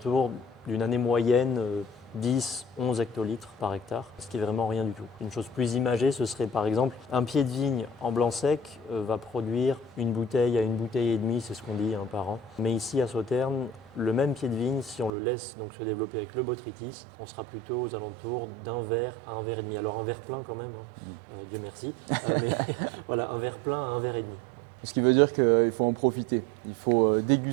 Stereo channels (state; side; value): drops out; left; at 15.1 s